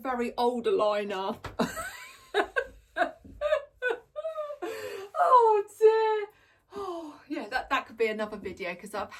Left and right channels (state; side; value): identical; both; correlation 1.00